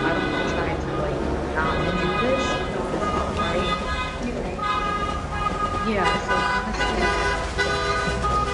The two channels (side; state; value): both; identical; correlation 1.00